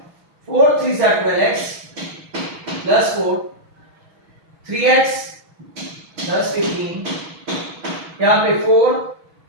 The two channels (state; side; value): late; left; 6.2 ms